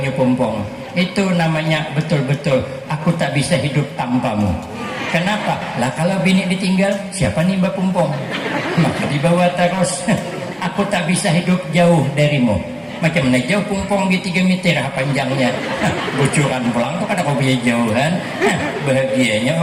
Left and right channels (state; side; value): identical; both; correlation 1.00